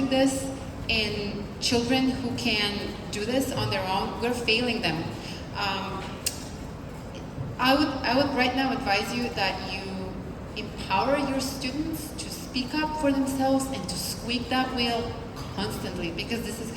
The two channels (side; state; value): both; identical; correlation 1.00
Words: this in children who can do this on their own, we're failing them. I would right now advise you that you empower your students to speak up for themselves and to squeak that wheel constantly, because this is